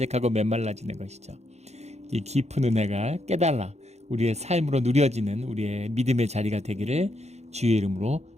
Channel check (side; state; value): left; late; 0.32 ms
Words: 메말라지는 것이죠. 이 깊은 은혜가 깨달아 우리의 삶으로 누려지는 우리의 믿음의 자리가 되기를 주의 이름으로